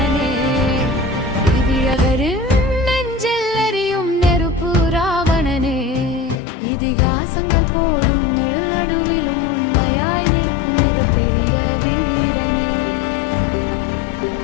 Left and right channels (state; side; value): drops out; right; at 6.4 s